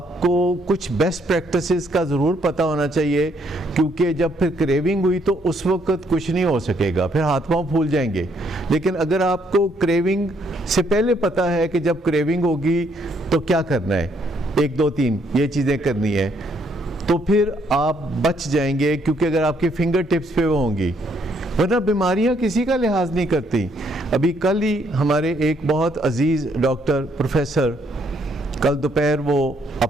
कुछ बेस्ट प्रैक्टिसेस का ज़रूर पता होना चाहिए, क्योंकि जब फिर क्रेविंग हुई तो उस वक्त कुछ नहीं हो सकेगा, फिर हाथ पांव फूल जाएंगे। लेकिन अगर आपको क्रेविंग से पहले पता है कि जब क्रेविंग होगी तो क्या करना है, 1 2 3 ये चीज़ें करनी है, तो फिर आप बच जाएंगे, क्योंकि अगर आपके फिंगर टिप्स पे वो होंगी, वरना बीमारियां किसी का लिहाज नहीं करती। अभी कल ही हमारे एक बहुत अजीज़ डॉक्टर प्रोफेसर कल दोपहर वो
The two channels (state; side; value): normal; both; correlation 0.70